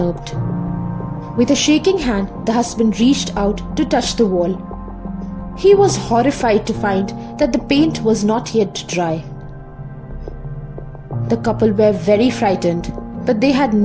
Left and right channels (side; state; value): both; identical; correlation 1.00